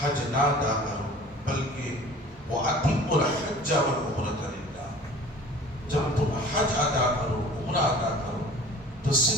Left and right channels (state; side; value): normal; both; correlation 0.45